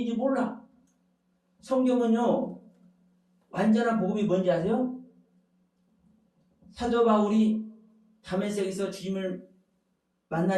몰라. 성경은요, 완전한 복음이 뭔지 아세요? 사도 바울이 다메섹에서 주님을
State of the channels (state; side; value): identical; both; correlation 1.00